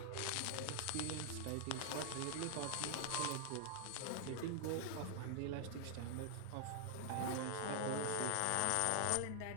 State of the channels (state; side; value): different; both; correlation 0.00